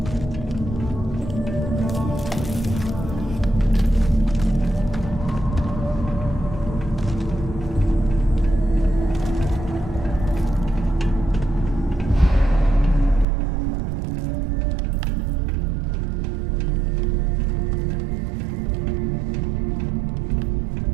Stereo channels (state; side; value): drops out; left; at 13.2 s